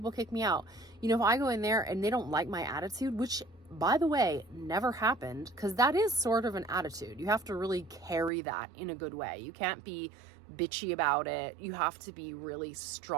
kick me out. You know, if I go in there and they don't like my attitude, which, by the way, never happened, because that is sort of an attitude. You have to really carry that in a good way. You can't be bitchy about it. You have to be really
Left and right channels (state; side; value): drops out; left; at 8.3 s